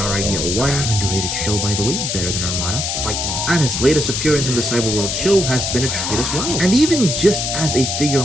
Idea 1, underrated show by the way, better than Armada, fight me. And his latest appearance in the Cyberworld show has been a treat as well. And even just as a figure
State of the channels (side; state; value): left; noise; hiss, 2 dB below the sound